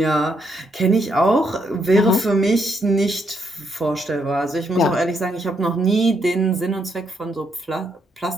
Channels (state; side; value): normal; both; correlation 0.75